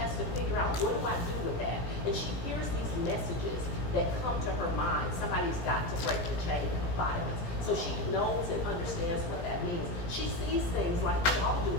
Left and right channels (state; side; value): late; right; 17 ms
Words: to figure out, what do I do with that? And she hears these messages that come to her mind. Somebody's got to break the chain of violence. So she knows and understands what that means. She sees things like we all do